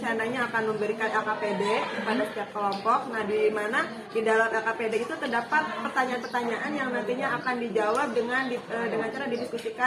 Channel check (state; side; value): identical; both; correlation 1.00